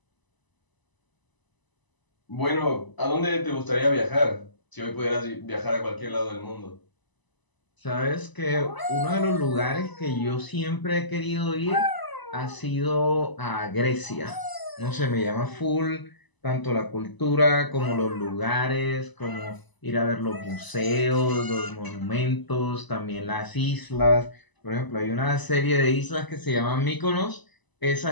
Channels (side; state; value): right; late; 1.0 ms